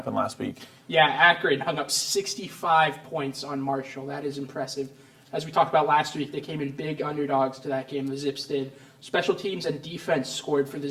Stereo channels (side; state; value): both; identical; correlation 1.00